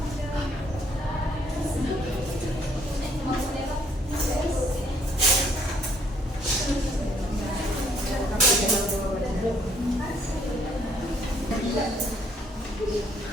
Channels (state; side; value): normal; both; correlation 0.65